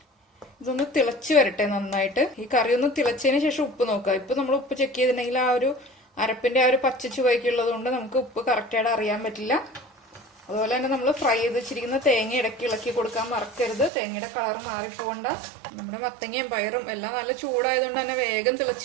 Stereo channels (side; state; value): left; drops out; at 13.9 s